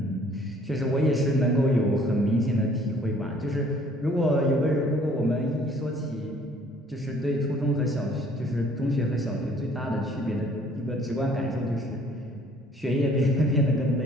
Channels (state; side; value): normal; both; correlation 0.58